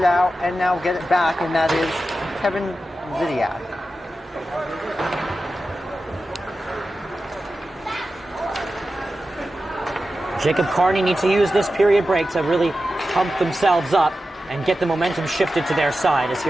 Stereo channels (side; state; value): both; normal; correlation 0.92